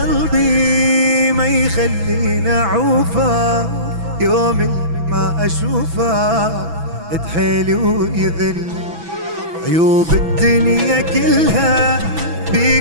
ما يخلينا عوفا، يوم ما اشوفه تحيلي ويذل. عيوب الدنيا كلها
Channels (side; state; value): left; late; 6.0 ms